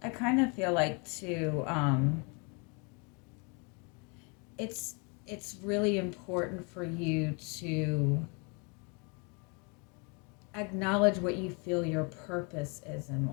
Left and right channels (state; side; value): quieter; right; 33.3 dB